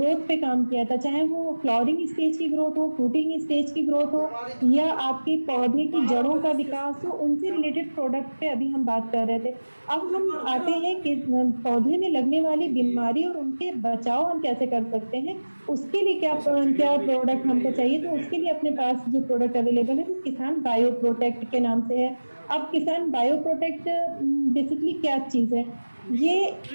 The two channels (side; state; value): both; inverted; correlation -1.00